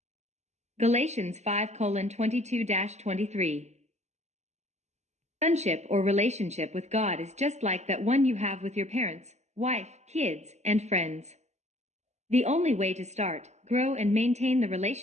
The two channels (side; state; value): left; late; 0.33 ms